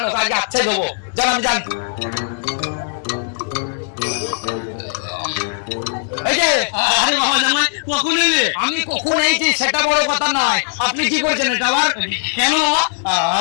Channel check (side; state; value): right; silent; digital silence